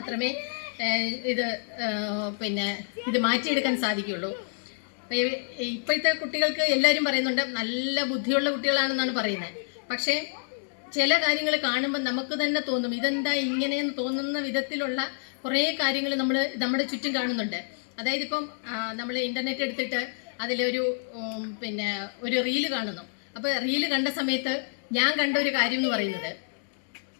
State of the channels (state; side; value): silent; right; digital silence